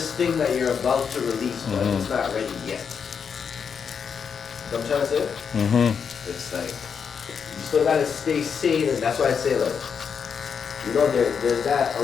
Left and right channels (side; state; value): right; quieter; 6.6 dB